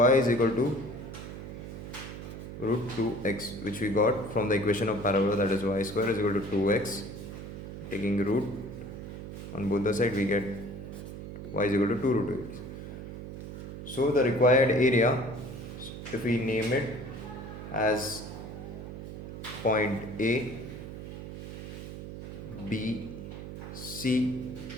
is equal to root 2x, which we got from the equation of parabola, that is y square is equal to 2x. Taking root on both the sides, we get y is equal to 2 root 2x. So the required area, if we name it as point A, B, C,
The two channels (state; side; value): noise; right; hum, 9 dB below the sound